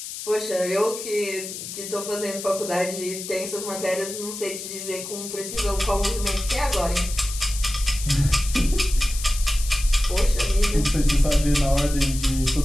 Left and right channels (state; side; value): noise; left; hiss, 9 dB below the sound